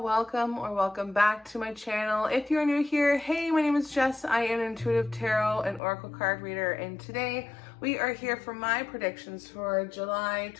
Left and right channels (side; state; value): right; drops out; at 5.8 s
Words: back to my channel. If you're new here, hey, my name is Jess. I am an intuitive tarot and oracle card reader, and today we are here for my predictions for July